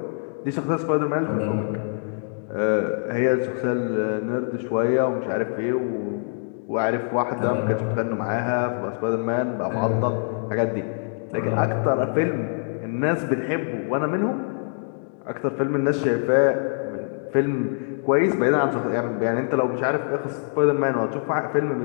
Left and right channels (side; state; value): right; silent; digital silence